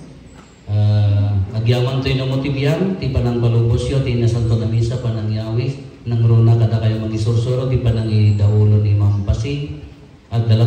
Agyaman to'y namotibyan, ti panang balubosyo, ti nasanto na misa, panang yawis, nang runa kada kayo magisursuro, ti panang idaulo ni Mampasi, at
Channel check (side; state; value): both; identical; correlation 1.00